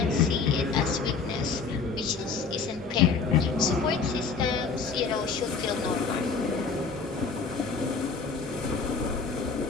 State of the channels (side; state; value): right; quieter; 5.0 dB